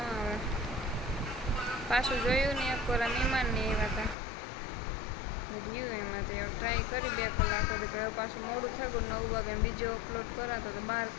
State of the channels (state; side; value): drops out; right; at 4.2 s